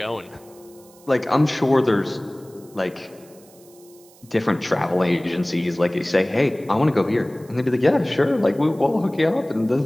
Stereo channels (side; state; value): right; noise; hiss, 26 dB below the sound